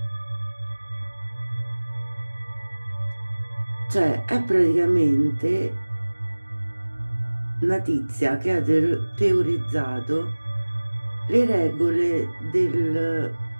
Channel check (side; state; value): both; inverted; correlation -1.00